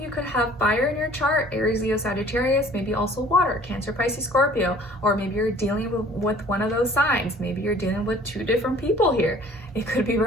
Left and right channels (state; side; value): normal; both; correlation 0.52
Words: could have fire in your chart, Aries, Leo, Sagittarius, maybe also water, Cancer, Pisces, Scorpio, or maybe you're dealing with one of those signs. Maybe you're dealing with 2 different people here. It could be